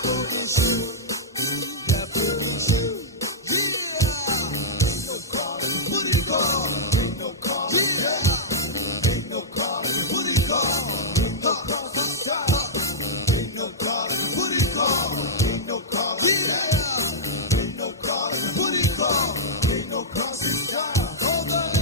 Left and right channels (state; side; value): normal; both; correlation -0.09